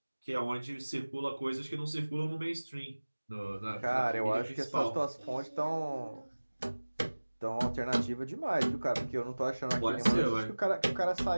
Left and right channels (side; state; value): both; inverted; correlation -1.00